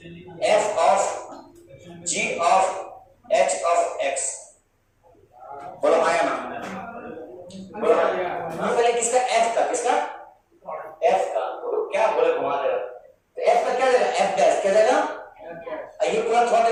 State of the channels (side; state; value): both; identical; correlation 1.00